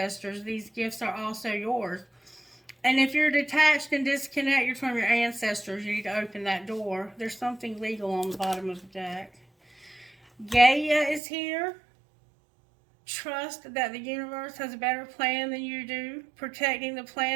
These gifts are also yours. And if you're detached and disconnected from your ancestors, you need to open that door. There's something legal on the bottom of the deck. Gaia is here. Trust that the universe has a better plan than you do. Protecting the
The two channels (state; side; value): drops out; left; at 11.2 s